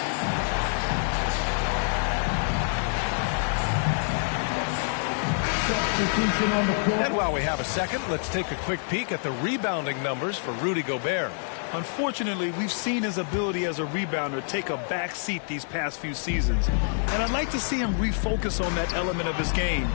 And while we have a second, let's take a quick peek at the rebounding numbers for Rudy Gobert. Unfortunately, we've seen his ability as a rebounder take a back seat these past few seasons. And I'd like to see him refocus on that element of his game.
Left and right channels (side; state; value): right; silent; 60 dB below the other